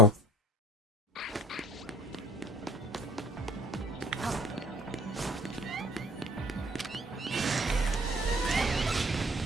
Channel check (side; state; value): both; normal; correlation 0.50